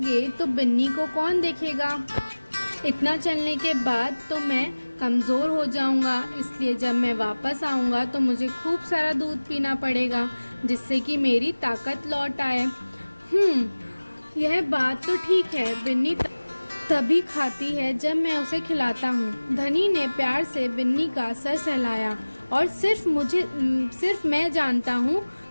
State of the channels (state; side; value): inverted; both; correlation -1.00